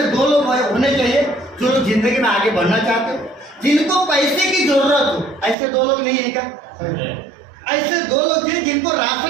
2 लोग होने चाहिए जो लोग जिंदगी में आगे बढ़ना चाहते हो, जिनको पैसे की जरूरत हो। ऐसे 2 लोग नहीं है क्या? ऐसे 2 लोग थे जिनको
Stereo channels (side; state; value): left; drops out; at 5.6 s